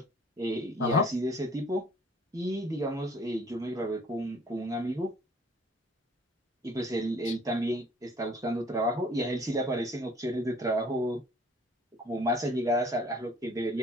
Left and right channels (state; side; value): normal; both; correlation 0.54